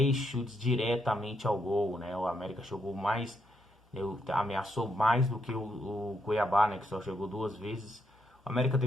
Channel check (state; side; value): normal; both; correlation 0.78